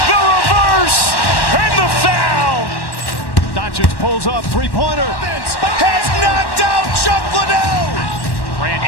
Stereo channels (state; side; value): late; right; 1.1 ms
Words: the reverse, and the foul. Doncic pulls up, three-pointer. Has knocked out Chuck Liddell. Grant